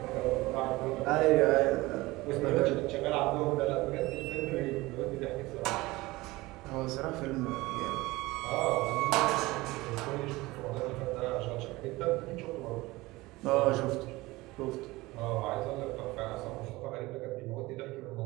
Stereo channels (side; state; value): left; quieter; 20.5 dB